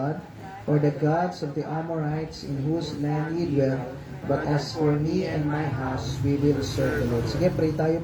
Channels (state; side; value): identical; both; correlation 1.00